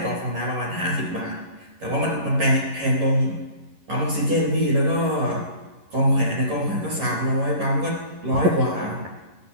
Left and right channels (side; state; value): left; late; 11 ms